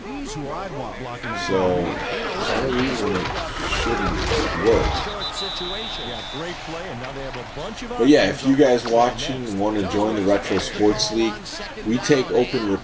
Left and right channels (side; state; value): both; identical; correlation 1.00